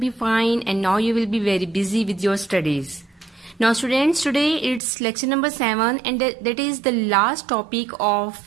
fine and now you will be very busy with your studies. Now students, today it's lecture number 7 and that is the last topic of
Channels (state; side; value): drops out; left; at 4.8 s